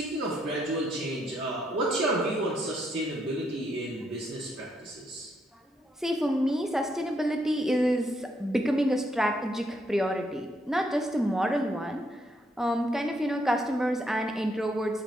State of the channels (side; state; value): both; normal; correlation 0.75